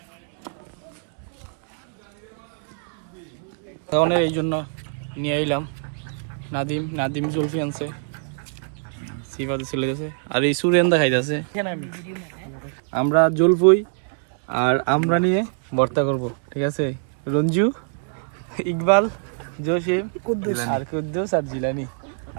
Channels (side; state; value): left; silent; 63 dB below the other